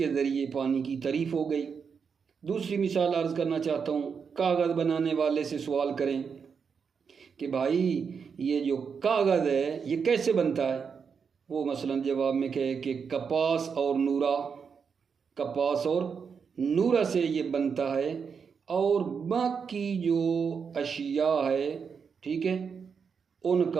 ذریعے پانی کی تعریف ہو گئی۔ دوسری مثال عرض کرنا چاہتا ہوں، کاغذ بنانے والے سے سوال کریں کہ بھائی یہ جو کاغذ ہے یہ کیسے بنتا ہے؟ وہ مثلا جواب میں کہے کہ کپاس اور نورا سے یہ بنتا ہے، اور باقی جو اشیاء ہے، ٹھیک ہے، ان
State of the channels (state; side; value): quieter; left; 6.2 dB